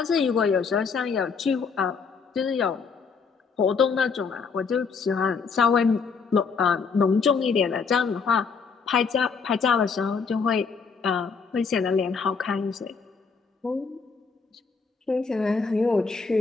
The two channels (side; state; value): right; quieter; 5.3 dB